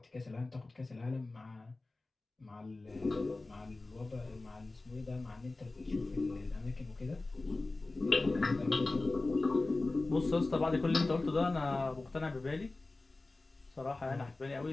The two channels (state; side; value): quieter; right; 3.2 dB